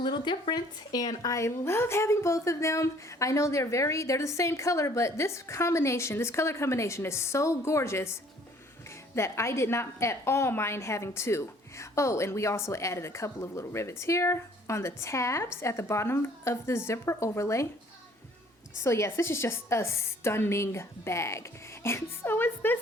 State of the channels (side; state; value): both; normal; correlation 0.57